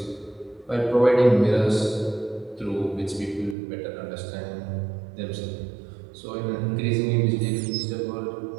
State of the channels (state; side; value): drops out; left; at 3.6 s